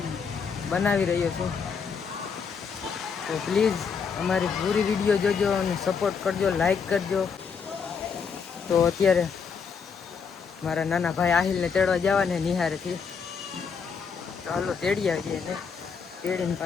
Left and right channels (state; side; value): quieter; right; 6.1 dB